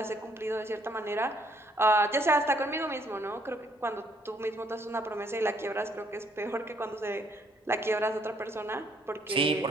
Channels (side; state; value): both; normal; correlation 0.67